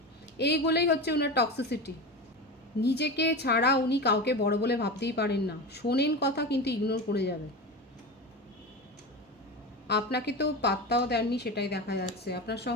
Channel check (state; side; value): normal; both; correlation 0.25